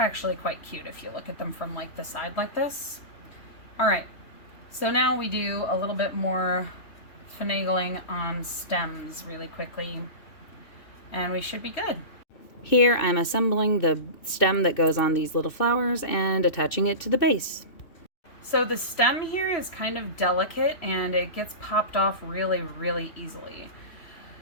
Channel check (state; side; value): late; right; 3.0 ms